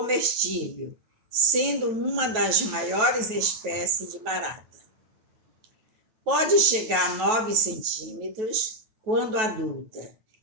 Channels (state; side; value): late; left; 9.2 ms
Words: sendo uma das maiores espécies de barata. Pode chegar a 9 centímetros quando adulta